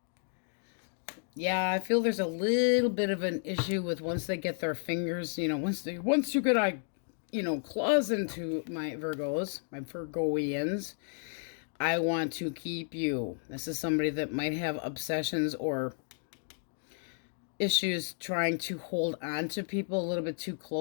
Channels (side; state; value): right; silent; digital silence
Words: Yeah, I feel there's a little bit of an issue with once they get their fingers, you know, once you get, claws into my Virgos, my Virgoians, I want to keep you. This is somebody that might have obsessions or issues trying to hold on to people a little bit too